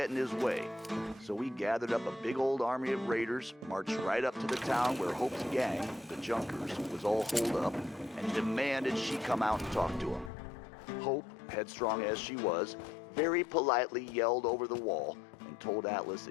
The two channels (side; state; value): right; drops out; at 10.3 s